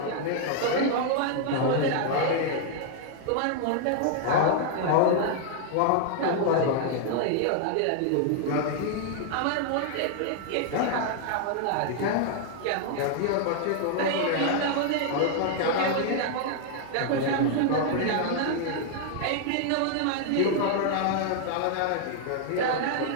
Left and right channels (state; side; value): different; both; correlation 0.00